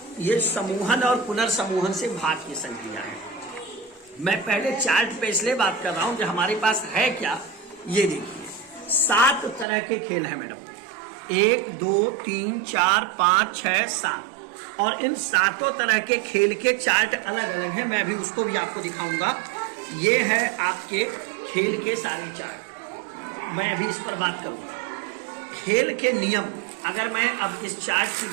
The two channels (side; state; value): left; drops out; at 9.7 s